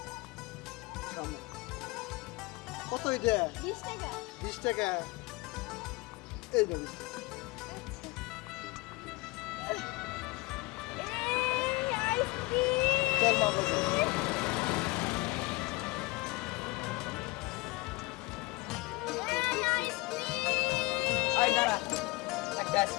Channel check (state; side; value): quieter; right; 23.7 dB